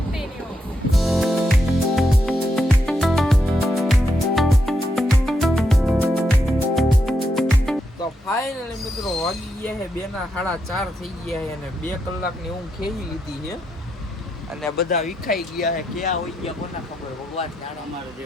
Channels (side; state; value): both; normal; correlation 0.82